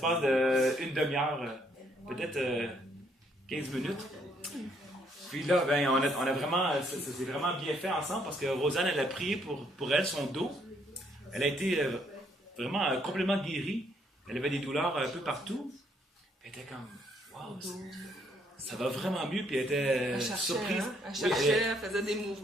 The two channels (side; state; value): both; normal; correlation 0.70